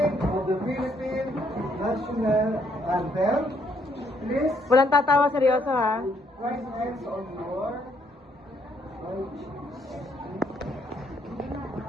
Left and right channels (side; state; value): both; normal; correlation 0.70